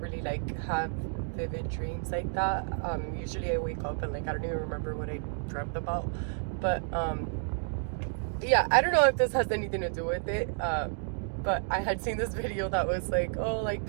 like have vivid dreams like that. Usually I wake up and like I don't even remember what I dreamt about. But yeah, I don't know if this has anything to do with it. But I had seen this video that was like, oh, like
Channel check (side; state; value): left; silent; 57 dB below the other